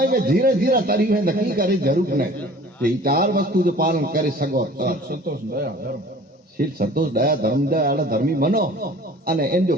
में धीरे धीरे तरी है नकी करे जरूर नहीं ये चार वस्तु जो पालन करे सको संतोष दया धर्म शील संतोष दया धर्म दया धर्मी बनो अने इन जो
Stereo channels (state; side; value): normal; both; correlation 0.47